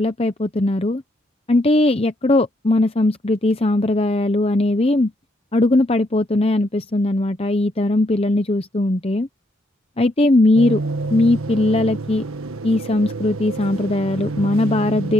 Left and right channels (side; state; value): both; normal; correlation 0.75